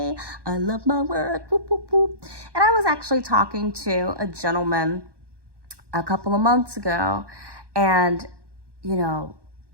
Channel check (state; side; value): late; left; 1.1 ms